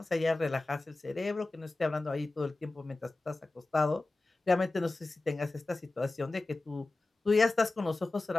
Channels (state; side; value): quieter; right; 3.1 dB